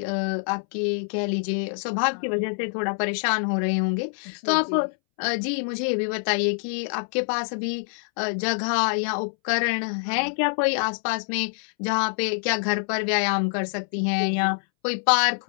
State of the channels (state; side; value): silent; right; 61 dB below the other